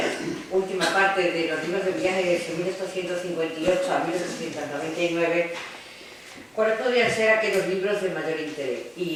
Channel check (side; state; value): both; identical; correlation 1.00